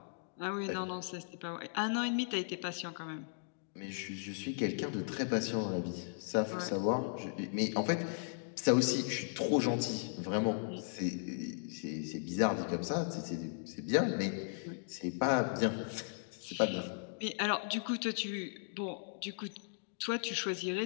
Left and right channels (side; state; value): right; silent; digital silence